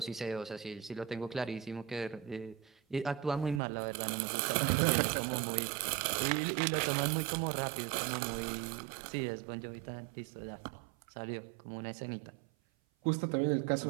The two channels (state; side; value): drops out; left; at 3.6 s